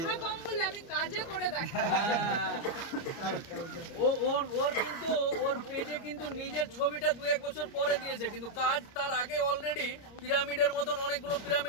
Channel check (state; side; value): late; right; 30 ms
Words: আমি কাজে করে দেখাই। ওর কিন্তু ওর পেজে কিন্তু নিজের ছবিটা 2-1 বছর পরে দিয়েছে, কিন্তু কাজ তার আগে অলরেডি পিরামিডের মতন অনেকগুলো